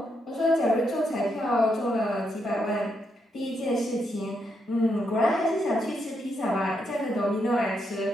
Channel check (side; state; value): both; normal; correlation 0.80